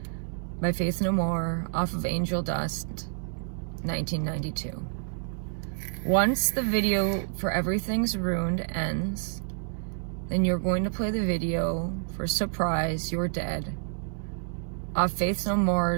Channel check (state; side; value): silent; left; digital silence